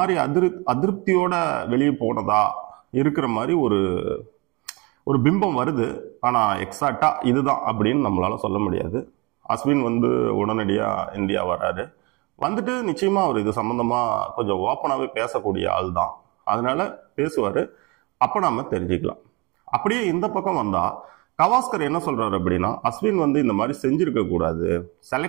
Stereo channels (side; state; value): left; quieter; 26.8 dB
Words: அதிருப்தியோட வெளியே போனதா இருக்கிற மாதிரி ஒரு பிம்பம் வருது. ஆனால் எக்ஸாக்டா இதுதான் அப்படின்னு நம்மளால சொல்ல முடியாது. அஸ்வின் உடனடியாக இந்தியா வராரு. வந்துட்டு நிச்சயமா அவர் இது சம்பந்தமா கொஞ்சம் ஓப்பனாகவே பேசக்கூடிய ஆள் தான். அதனால பேசுவார். அப்போ நாம தெரிஞ்சுக்கலாம். அப்படியே இந்த பக்கம் வந்தா கவாஸ்கர் என்ன சொல்றாரு அப்படின்னா, அஸ்வின் இந்த மாதிரி செஞ்சிருக்க கூடாது.